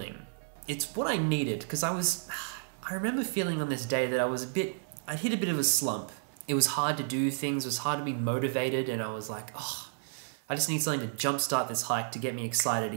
It's what I needed, because I remember feeling on this day that I'd hit a bit of a slump. It was hard to do things, it was hard to be motivated, and I was like, I just need something to jumpstart this hike to get me excited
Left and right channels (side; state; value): left; silent; 57 dB below the other